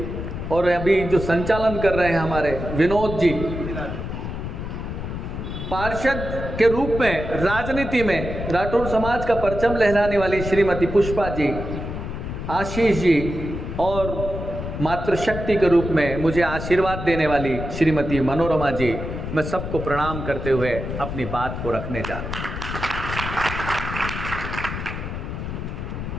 और अभी जो संचालन कर रहे हैं हमारे विनोद जी, पार्षद के रूप में राजनीति में राठौड़ समाज का परचम लहराने वाली श्रीमती पुष्पा जी, आशीष जी, और मातृशक्ति के रूप में मुझे आशीर्वाद देने वाली श्रीमती मनोरमा जी, मैं सबको प्रणाम करते हुए अपनी बात को रखने जा रहा हूँ।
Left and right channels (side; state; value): left; noise; rumble, 6 dB below the sound